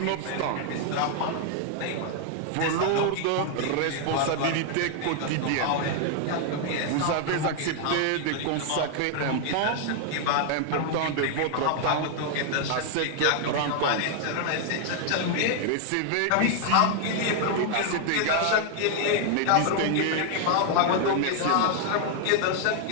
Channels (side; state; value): both; different; correlation 0.00